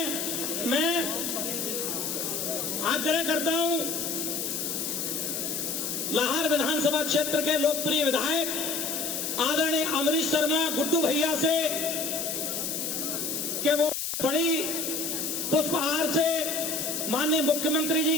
मैं आग्रह करता हूं लाहौर विधानसभा क्षेत्र के लोकप्रिय विधायक आदरणीय अमरीश शर्मा गुड्डू भैया से कि वो बड़ी पुष्पहार से माननीय मुख्यमंत्री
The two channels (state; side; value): noise; left; hiss, 2 dB below the sound